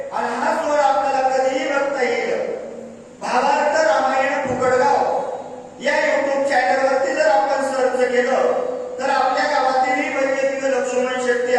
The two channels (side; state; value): both; identical; correlation 1.00